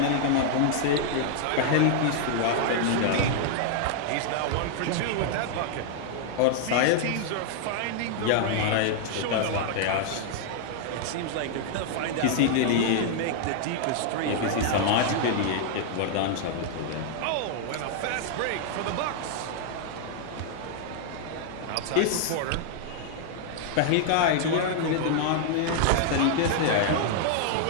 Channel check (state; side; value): different; both; correlation 0.00